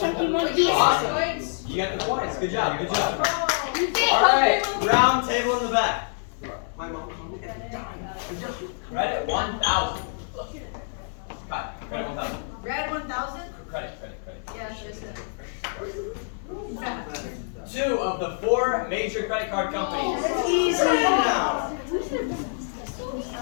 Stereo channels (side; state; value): right; silent; digital silence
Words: monkey. Awesome. You got the points. Good job. Good job. All right. Round table in the back. Credit 1,000. Cut. Credit 1,000. Red 1,000? Credit. Yeah, sure. 2 of the 4 major credit card companies. That's easy. Now.